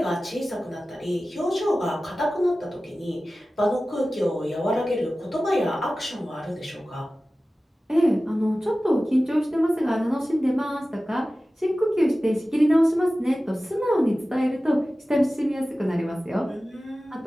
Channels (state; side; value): normal; both; correlation 0.96